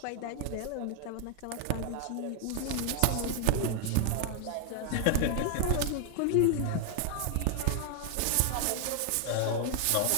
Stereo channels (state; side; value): different; both; correlation 0.00